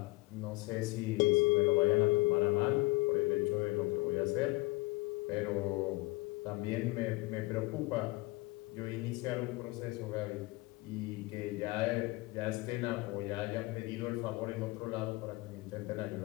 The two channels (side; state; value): right; quieter; 22.0 dB